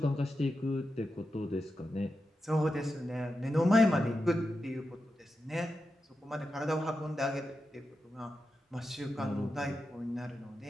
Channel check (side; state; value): both; normal; correlation 0.90